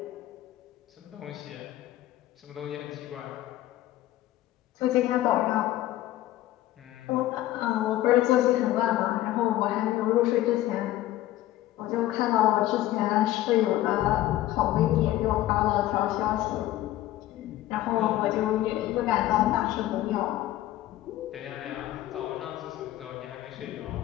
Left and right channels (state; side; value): quieter; right; 14.7 dB